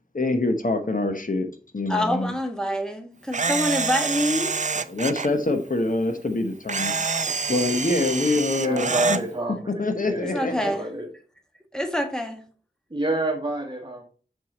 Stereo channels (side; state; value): both; normal; correlation 0.55